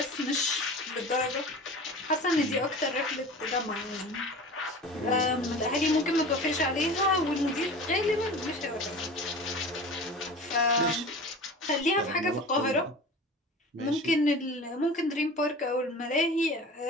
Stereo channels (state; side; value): normal; both; correlation 0.36